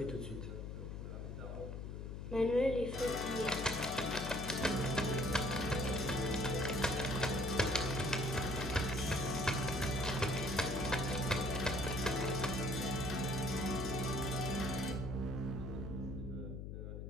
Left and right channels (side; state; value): left; noise; hum, 7 dB below the sound